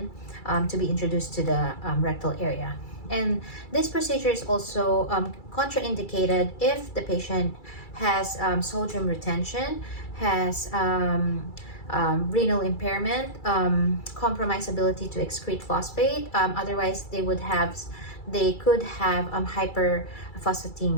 to be introduced to the rectal area. And this procedure is also contraindicated if the patient has sodium retention, has renal impairment, compromised ability to excrete phosphate. Otherwise, they could have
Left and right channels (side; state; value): right; late; 2.3 ms